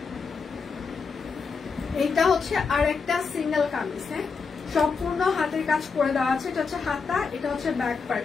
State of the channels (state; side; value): quieter; right; 5.1 dB